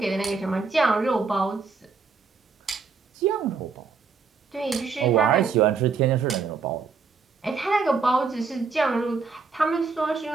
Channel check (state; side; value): quieter; left; 5.0 dB